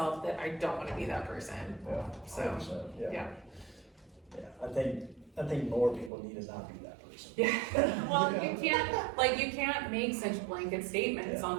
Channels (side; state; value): left; drops out; at 6.1 s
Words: that I don't want to be that person. So, I think more people need to not be that person. Well, you can't make such blanket statements